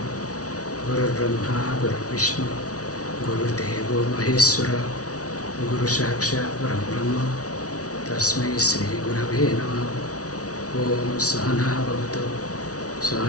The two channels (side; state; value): right; late; 0.67 ms